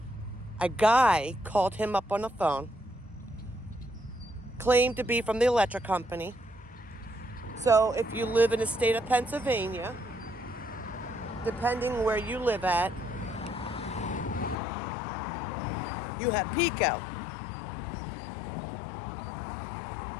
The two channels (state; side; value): drops out; right; at 14.6 s